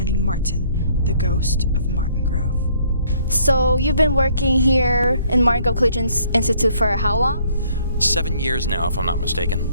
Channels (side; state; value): both; inverted; correlation -0.63